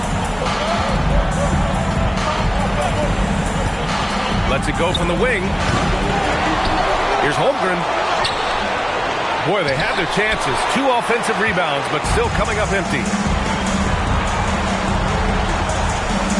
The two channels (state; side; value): identical; both; correlation 1.00